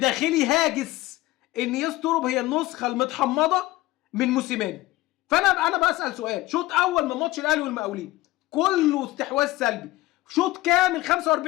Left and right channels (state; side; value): quieter; right; 18.2 dB